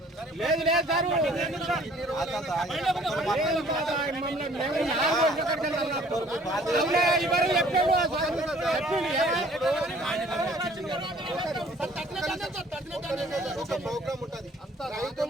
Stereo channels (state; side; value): normal; both; correlation 0.56